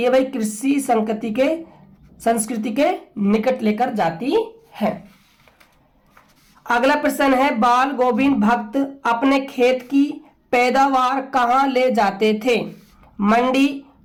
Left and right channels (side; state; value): both; identical; correlation 1.00